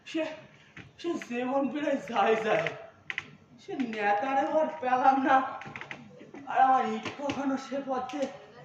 সে জীবন বেড়ায় যায় সে নেতারে এবার পেলাম না। আর আমার ইট কখনো সে পথে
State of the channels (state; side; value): identical; both; correlation 1.00